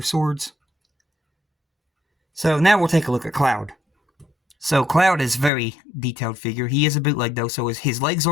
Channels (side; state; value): right; drops out; at 5.5 s